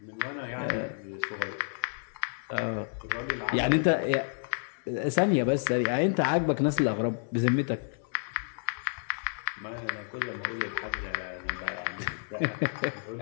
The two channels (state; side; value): silent; right; digital silence